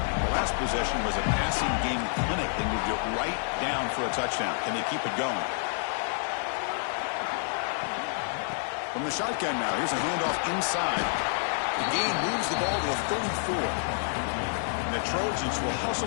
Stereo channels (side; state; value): right; silent; 59 dB below the other